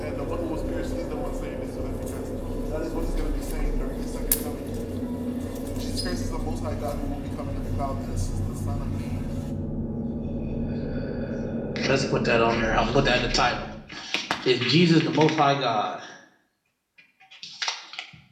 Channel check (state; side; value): identical; both; correlation 1.00